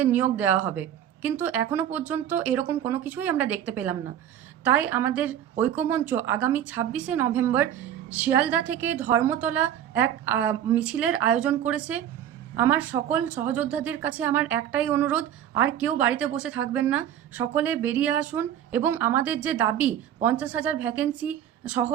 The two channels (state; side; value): quieter; left; 10.4 dB